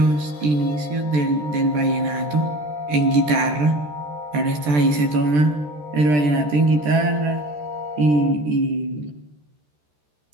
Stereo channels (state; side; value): late; left; 13 ms